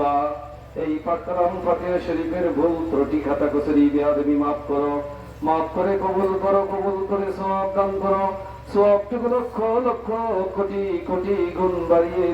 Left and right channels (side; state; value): both; identical; correlation 1.00